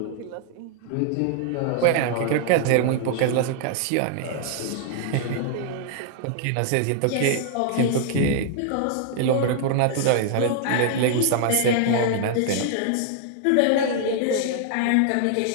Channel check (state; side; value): different; both; correlation -0.01